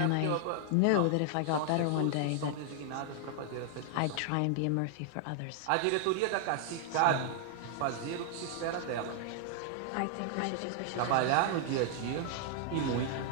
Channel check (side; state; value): both; different; correlation 0.00